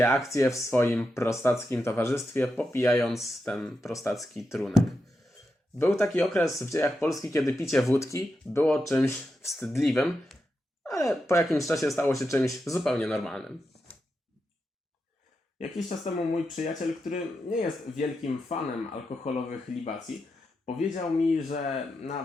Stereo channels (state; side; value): normal; both; correlation 0.87